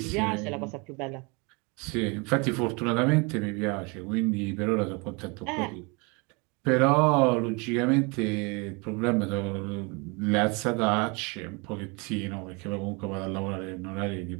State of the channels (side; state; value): left; quieter; 29.9 dB